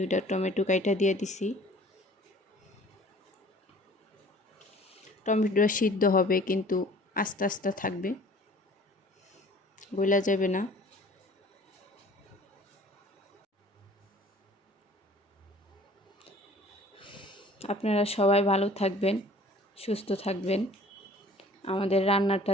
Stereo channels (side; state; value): both; normal; correlation 0.50